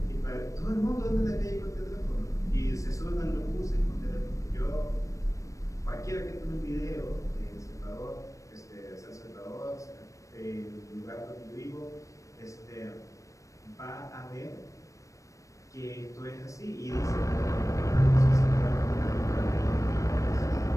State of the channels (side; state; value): right; late; 0.16 ms